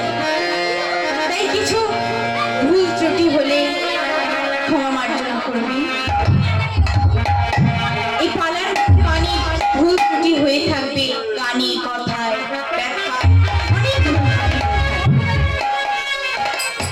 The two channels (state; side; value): identical; both; correlation 1.00